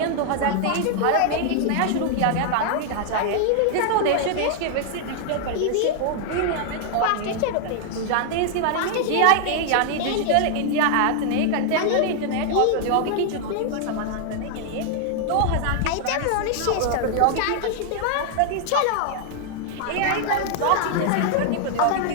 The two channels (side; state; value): both; different; correlation 0.00